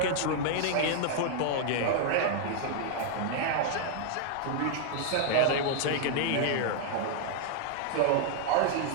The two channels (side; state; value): both; different; correlation 0.00